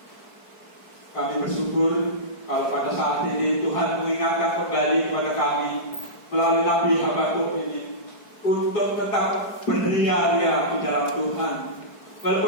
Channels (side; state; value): right; late; 4.6 ms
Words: kami bersyukur kalau pada saat ini Tuhan mengingatkan kembali kepada kami melalui Nabi Habakuk ini untuk tetap beria-ria di dalam Tuhan.